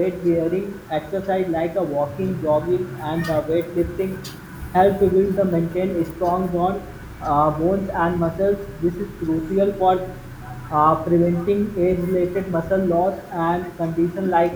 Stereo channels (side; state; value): both; identical; correlation 1.00